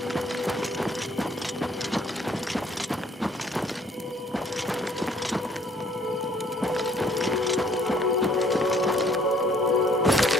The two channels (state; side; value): normal; both; correlation 0.60